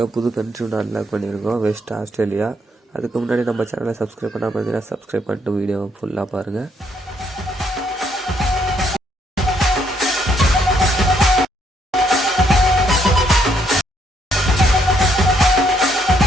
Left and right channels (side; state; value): both; normal; correlation 0.71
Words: புது கண்ட்ரி ஒன்று அன்லாக் பண்ணியிருக்கோம், வெஸ்ட் ஆஸ்திரேலியா. அதுக்கு முன்னாடி நம்ம சேனலை சப்ஸ்கிரைப் பண்ணால் பார்த்தீங்கன்னா சப்ஸ்கிரைப் பண்ணிட்டு வீடியோவை ஃபுல்லாக பாருங்கள்.